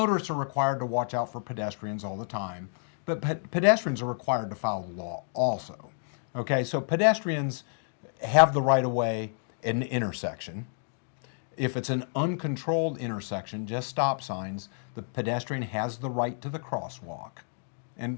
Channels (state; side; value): silent; right; digital silence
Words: are required to watch out for pedestrians all the time, but pedestrians are required to follow the law also. Okay, so pedestrians have the right of way at an intersection. If it's an uncontrolled intersection, just stop signs, the pedestrian has the right to the crosswalk,